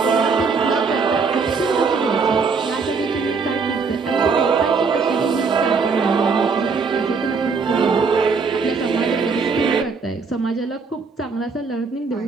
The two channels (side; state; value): left; quieter; 4.9 dB